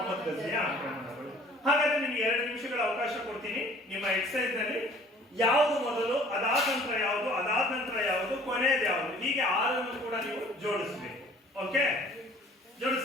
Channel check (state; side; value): normal; both; correlation 0.52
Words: ಗಜ್ನಿಯ ಆಕ್ರಮಣಗಳು. ಹಾಗಾದ್ರೆ ನಿಮ್ಗೆ 2 ನಿಮಿಷಗಳ ಅವಕಾಶ ಕೊಡ್ತೀನಿ. ನಿಮ್ಮ ಎಕ್ಸರ್ಸೈಸ್ ನಲ್ಲಿ ಯಾವುದು ಮೊದಲು, ಅದಾದ ನಂತರ ಯಾವುದು, ಅದಾದ ನಂತರ ಯಾವುದು, ಕೊನೆಯದು ಯಾವುದು, ಹೀಗೆ 6 ಕೂಡ ನೀವು ಜೋಡಿಸಬೇಕು. ಓಕೆ,